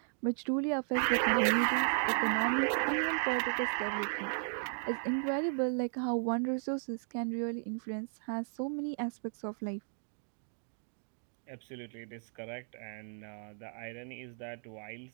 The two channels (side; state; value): left; silent; digital silence